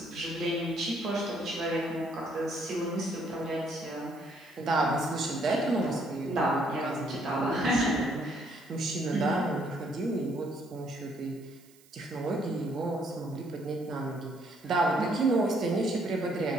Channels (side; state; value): right; noise; hiss, 27 dB below the sound